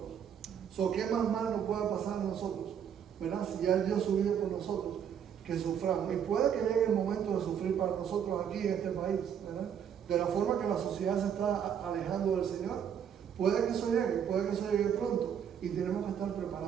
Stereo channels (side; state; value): left; quieter; 8.4 dB